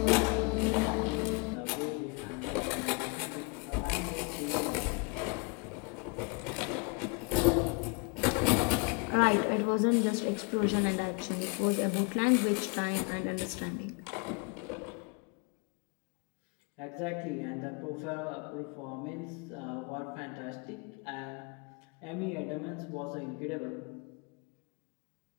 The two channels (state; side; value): quieter; right; 31.3 dB